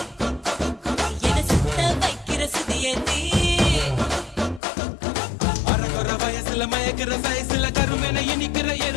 என சுத்த வைக்கிற சுதியத்தி அரகுற வயசுல மயக்கிற சைஸ்ல கருமென இனிக்கிற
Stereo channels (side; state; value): right; drops out; at 4.6 s